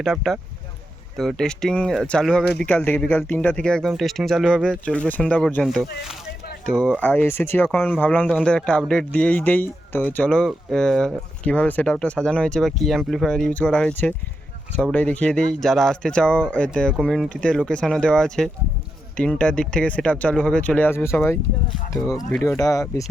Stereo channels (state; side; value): normal; both; correlation 0.85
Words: আপটা। তো টেস্টিং চালু হবে বিকাল 3টা থেকে একদম টেস্টিং চালু হবে, চলবে সন্ধ্যা পর্যন্ত। তো এসেছি যখন ভাবলাম তোমাদের একটা আপডেট দিয়েই দেই। তো চলো কীভাবে সেট আপটা সাজানো হয়েছে বা কী অ্যাম্পলিফায়ার ইউজ করা হয়েছে সবটাই দেখিয়ে দিই। যারা আসতে চাও এতে কমিউনিটিতে লোকেশানও দেওয়া আছে। 3টার দিক থেকে সেট আপ চালু হবে, চলে আসবে সবাই। তো ভিডিওটা বেশি